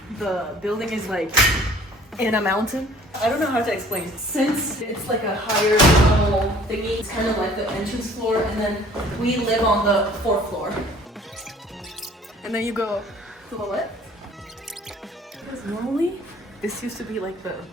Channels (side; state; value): both; normal; correlation 0.53